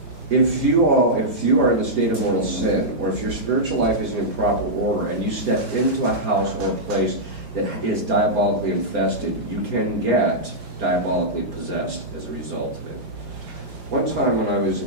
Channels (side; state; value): left; late; 4.9 ms